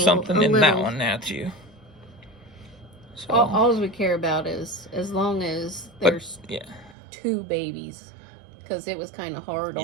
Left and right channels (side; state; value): left; drops out; at 7.0 s